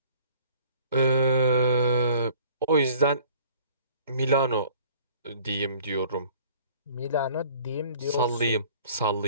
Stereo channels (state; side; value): inverted; both; correlation -0.52